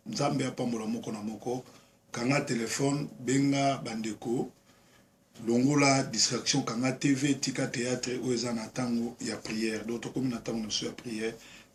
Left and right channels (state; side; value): identical; both; correlation 1.00